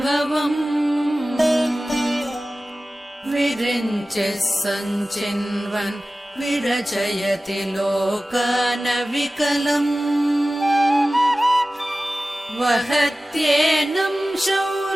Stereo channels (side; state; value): both; normal; correlation 0.96